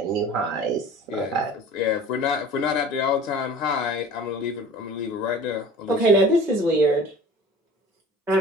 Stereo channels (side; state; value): both; normal; correlation 0.42